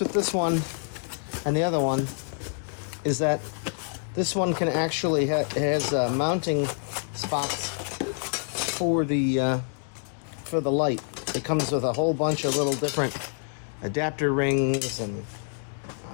with this one and the other one is that this one can actually has mounting spots for the light. It comes with a whole bunch of little different adapter rings and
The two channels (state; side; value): silent; right; 60 dB below the other